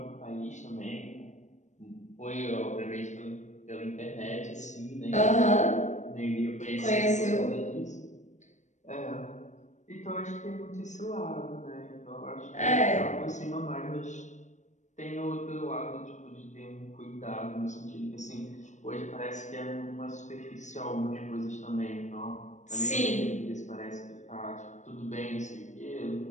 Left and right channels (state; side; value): late; right; 0.35 ms